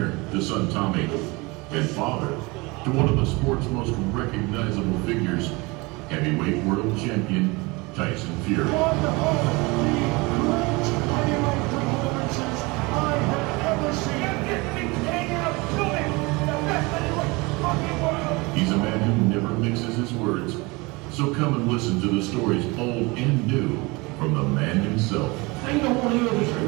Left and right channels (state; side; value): quieter; left; 25.1 dB